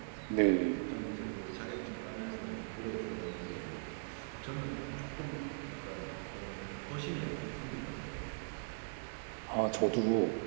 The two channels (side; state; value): left; silent; 52 dB below the other